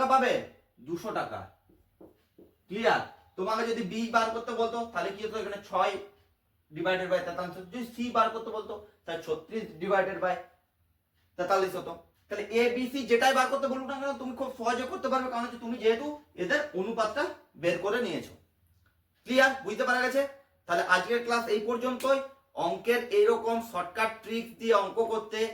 পাবে, 200 টাকা। ক্লিয়ার? তোমাকে যদি বি বার করতে বলতো তাহলে কি হতো, এখানে 6 ডিভাইডেড বাই 43, যদি সি বার করতে বলতো তাহলে 36 ডিভাইডেড বাই 43 হতো। তাহলে এ বি সি যেটাই বার করতে বলুক না কেন তুমি খুব সহজে করতে পারবে, কারণ হচ্ছে তুমি যেহেতু এদের অনুপাতটা বের করে নিয়েছো। ক্লিয়ার? বুঝতে পারা গেছে? তাহলে আজকের ক্লাস এই পর্যন্তই। অঙ্কের এইরকম শর্টকাট ট্রিক্স দিয়ে অঙ্ক করতে,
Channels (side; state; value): both; identical; correlation 1.00